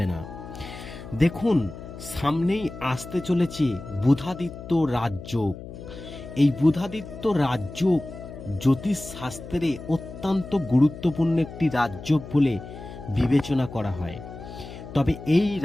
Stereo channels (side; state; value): left; noise; hum, 13 dB below the sound